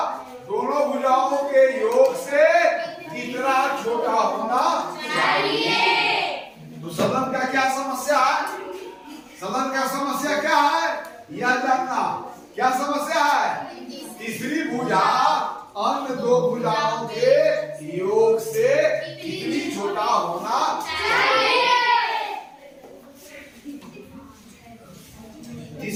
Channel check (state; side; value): identical; both; correlation 1.00